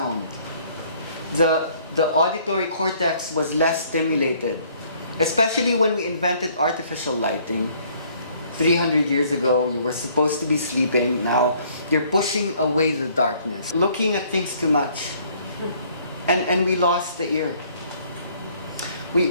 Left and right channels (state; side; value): inverted; both; correlation -0.61